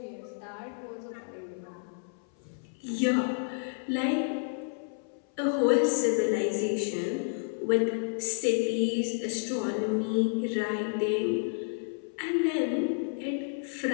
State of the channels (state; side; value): silent; right; 58 dB below the other